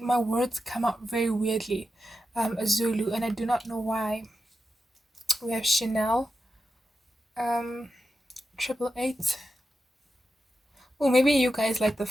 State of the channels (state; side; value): normal; both; correlation 0.90